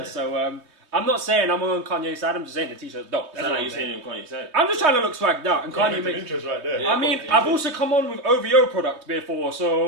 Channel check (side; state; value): left; late; 3.2 ms